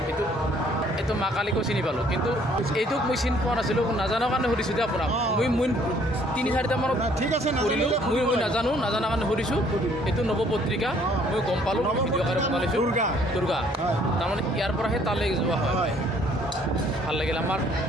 কিন্তু এইটো মা কালীকো চিনি পালোঁ কিন্তু এইটোক মই চিনি পোৱা নাছিলোঁ নাজানাৰ কাৰণে সুধিছোঁ যে আপোনাক মই 3-4টা মানত ঠিক আছে কৰিলোঁ মই নাজানাৰ কাৰণে সুধিছোঁ এইটো নৱপত্ৰিকা মই গম পালোঁ ভিডিঅ' আকাৰে বনাইছোঁ দুৰ্গা তাৰমানে ইয়াৰ পৰাহে তালৈ যোৱা হয় ভাল লাগিল আমাৰ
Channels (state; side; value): normal; both; correlation 0.61